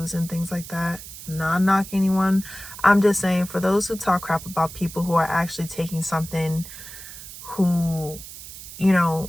and things like that. Not knocking anyone. I'm just saying, for those who talk crap about people who are actually taking something, who,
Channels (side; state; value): right; noise; hiss, 14 dB below the sound